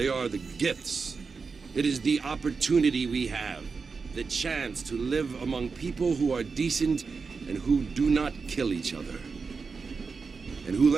are the gifts. It is the opportunity we have, the chance to live among people who are decent and who do not kill each other, and who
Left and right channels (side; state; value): left; quieter; 4.9 dB